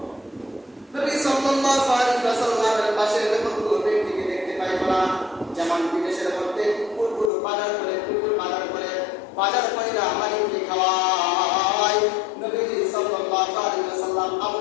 নবী সাল্লাল্লাহু আলাইহি ওয়াসাল্লামের পাশে এরকম কোনো ব্যক্তিকে দেখতে পাইব না, যেমন বিদেশের মধ্যে কুকুরগুলো বাজার করে, কুকুর বাজার কইরা মালিককে খাওয়ায়। নবীজি সাল্লাল্লাহু আলাইহি ওয়াসাল্লাম আবু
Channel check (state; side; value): drops out; right; at 7.3 s